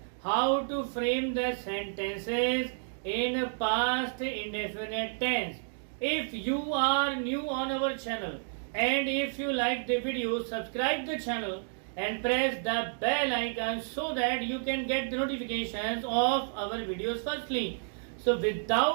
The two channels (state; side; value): silent; left; digital silence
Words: how to frame the sentences in past indefinite tense. If you are new on our channel and if you like the video, subscribe the channel and press the bell icon so that you can get the notifications of our videos firstly. So